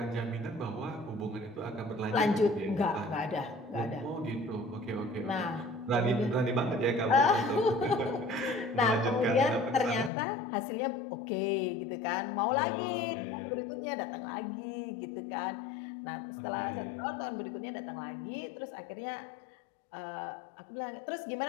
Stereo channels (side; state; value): right; drops out; at 10.1 s